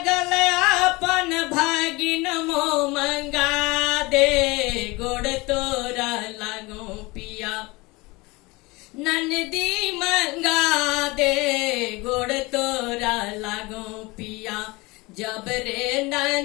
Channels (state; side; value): quieter; right; 23.7 dB